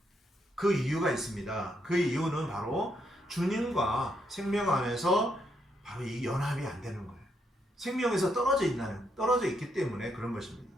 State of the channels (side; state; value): both; normal; correlation 0.77